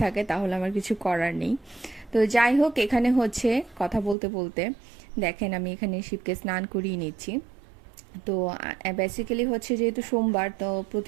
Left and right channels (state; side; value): drops out; left; at 4.2 s